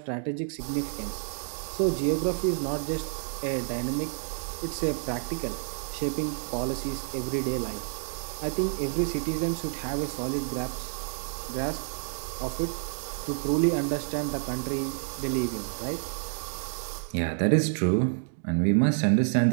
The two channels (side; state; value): left; silent; digital silence